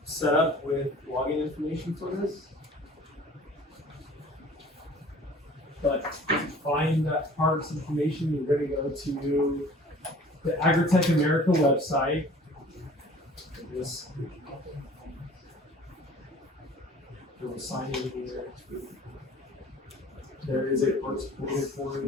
set up with login information for this. But to find that parks information, you're going to go to the Agritech America website. This, you'll sign in here. There is a parks portal for it.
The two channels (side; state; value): both; normal; correlation 0.48